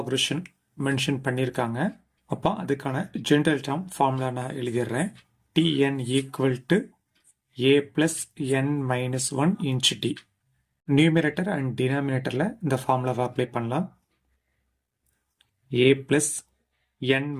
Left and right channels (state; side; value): identical; both; correlation 1.00